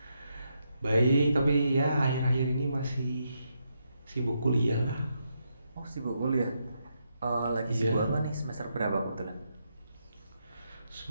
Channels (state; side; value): inverted; both; correlation -0.81